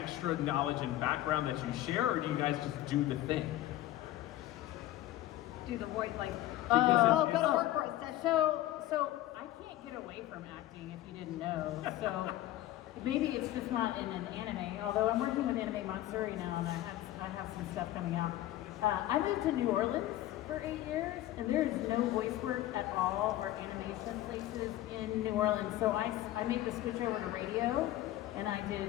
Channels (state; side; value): quieter; right; 14.7 dB